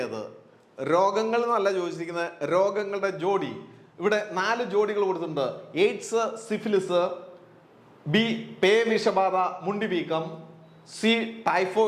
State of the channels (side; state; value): both; identical; correlation 1.00